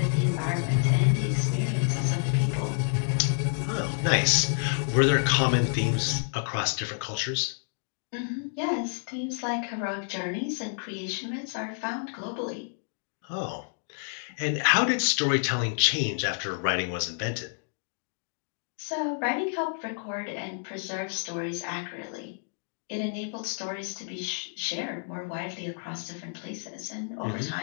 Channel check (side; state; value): right; silent; digital silence